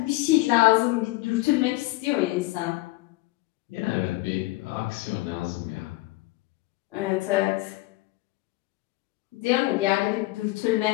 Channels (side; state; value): right; quieter; 20.5 dB